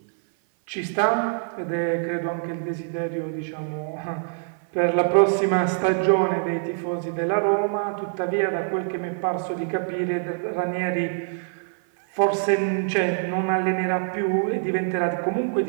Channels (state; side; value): silent; left; 59 dB below the other